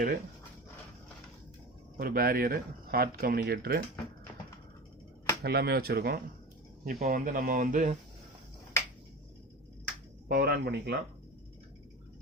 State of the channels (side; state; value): both; normal; correlation 0.31